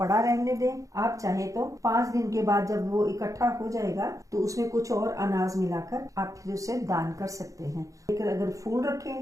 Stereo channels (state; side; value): late; left; 0.16 ms